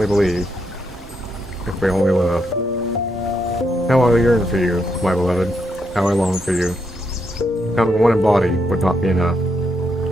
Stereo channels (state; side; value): normal; both; correlation 0.79